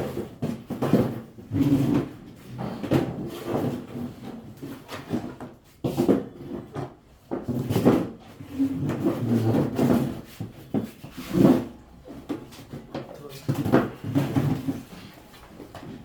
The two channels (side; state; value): both; identical; correlation 1.00